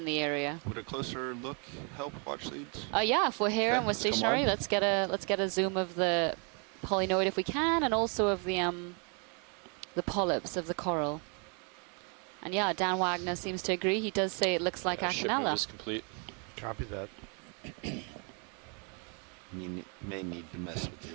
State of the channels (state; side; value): quieter; left; 36.4 dB